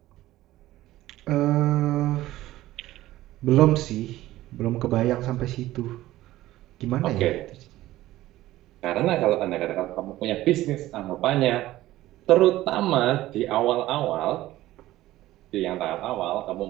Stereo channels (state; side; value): quieter; left; 15.8 dB